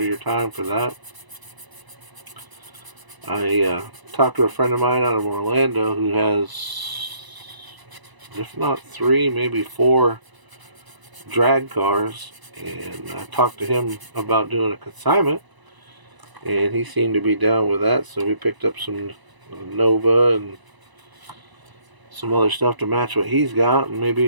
your time for that? I talked to a friend of mine out of Orlando who has, if not 3, maybe 4 drag cars, and I talked to him about doing a consignment, and he seemed to be down with that. So we picked up some Nova and some other stuff to match what he's got, and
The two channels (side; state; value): left; late; 1.0 ms